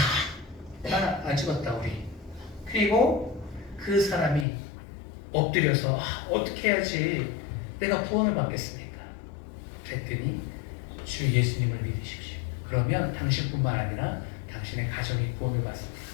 안 죽었다 우리. 그리고 그 사람이 엎드려서 어떻게 해야지 내가 구원을 받겠습니까? 그랬더니 주 예수님을 믿으십시오. 그러면 당신뿐만 아니라 당신의 가정이 구원을 받습니다.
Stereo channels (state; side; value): drops out; right; at 4.5 s